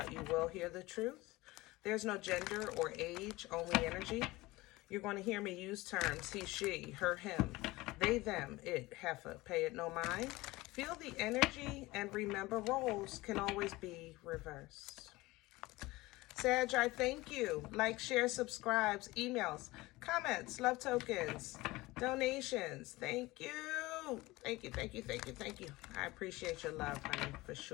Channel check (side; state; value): right; quieter; 20.3 dB